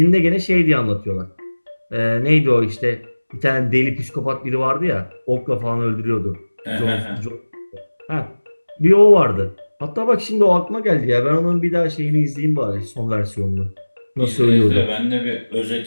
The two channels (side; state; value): both; inverted; correlation -1.00